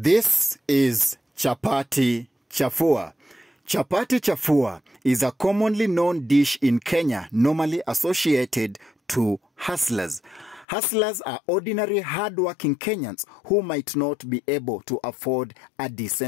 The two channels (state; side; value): drops out; right; at 10.7 s